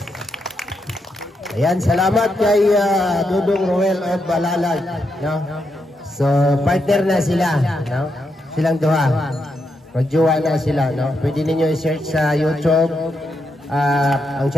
Ayan, salamat kay Dudong Ruel of Malalag, no? So, partner na sila, no? Silang duha. Magjowa na sila, no? Pwede ninyo i-search sa YouTube. Ang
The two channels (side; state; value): both; normal; correlation 0.82